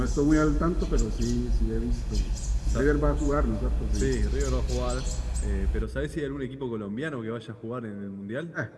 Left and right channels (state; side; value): identical; both; correlation 1.00